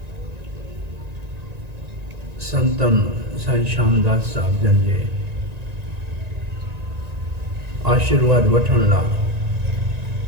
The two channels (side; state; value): left; late; 1.9 ms